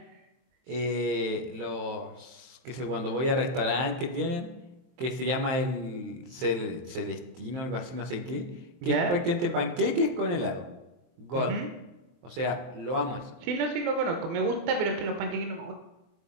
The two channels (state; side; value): late; left; 23 ms